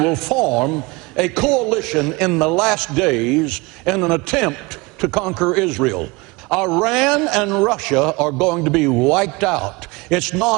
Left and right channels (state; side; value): quieter; left; 24.7 dB